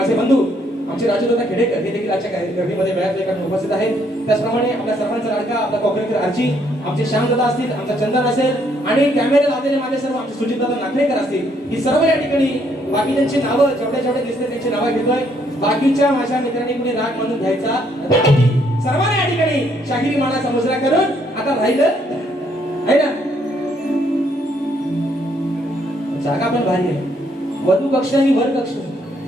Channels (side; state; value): both; normal; correlation 0.70